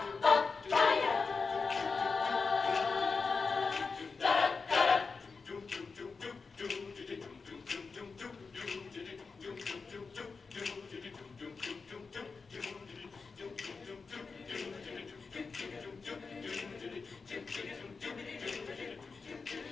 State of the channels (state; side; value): quieter; right; 4.6 dB